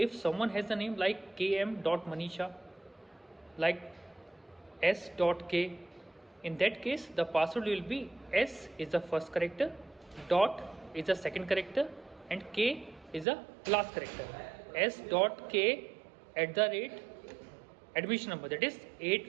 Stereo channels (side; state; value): left; drops out; at 13.2 s